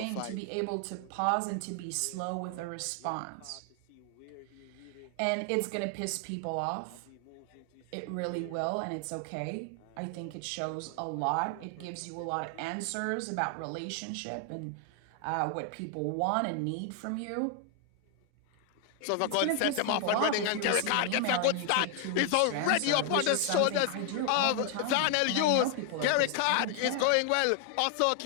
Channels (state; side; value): different; both; correlation 0.00